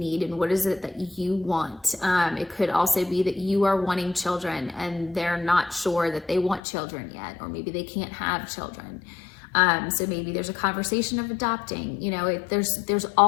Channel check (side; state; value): right; drops out; at 6.6 s